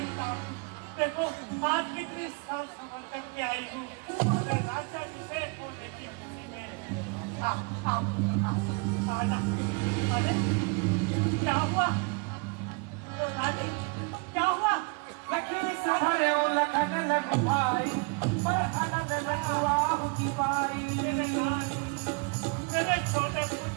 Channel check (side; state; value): left; quieter; 31.6 dB